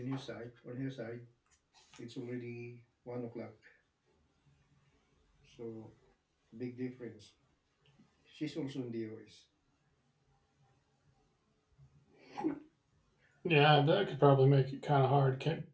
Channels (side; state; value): both; identical; correlation 1.00